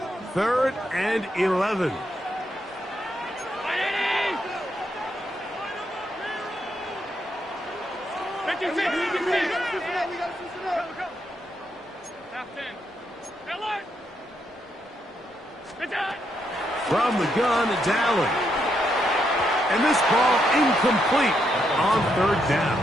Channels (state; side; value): normal; both; correlation 0.79